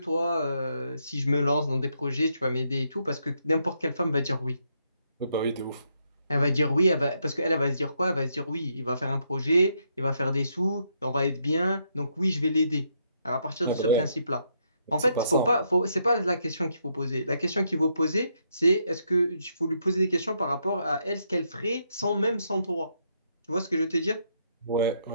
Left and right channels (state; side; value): inverted; both; correlation -0.77